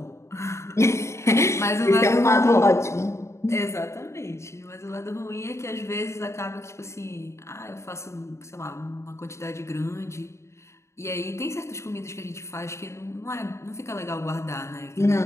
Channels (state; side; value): late; right; 0.14 ms